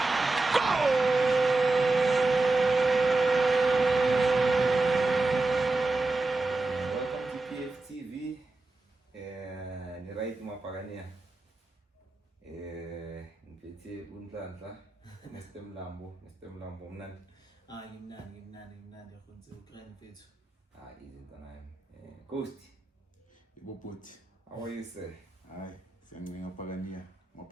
Unhlanhla Mr Mlambo mnandi ngimnandi yakhonze ukrani mfethu izinto nayo Ghost iboboti how are you sir hayi siyancenga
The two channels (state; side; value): quieter; left; 3.2 dB